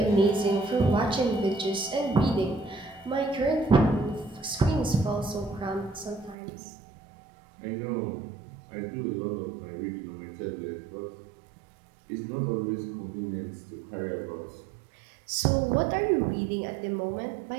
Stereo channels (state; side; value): drops out; left; at 6.4 s